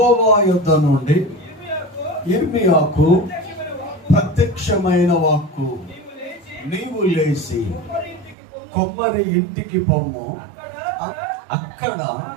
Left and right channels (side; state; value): left; drops out; at 8.3 s